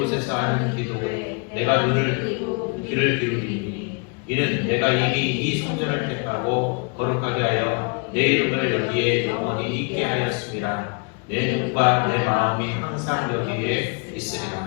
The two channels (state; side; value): quieter; right; 33.6 dB